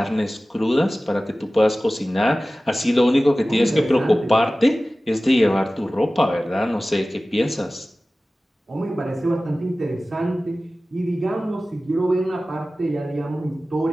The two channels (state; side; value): normal; both; correlation 0.96